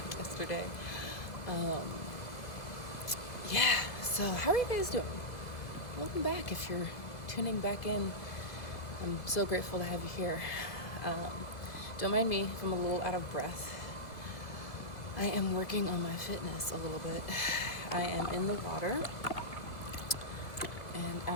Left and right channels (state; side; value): late; right; 2.0 ms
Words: yesterday. Um, yeah, so how are you guys doing? Welcome back if you're tuning back in. I'm so grateful to have you here. Don't mind me if I'm a little out of breath. I am working on my fitness a little bit. I am in the water and